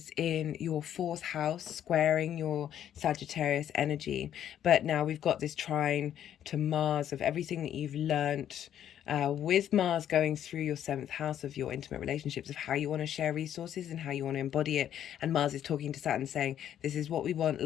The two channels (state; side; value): quieter; right; 10.4 dB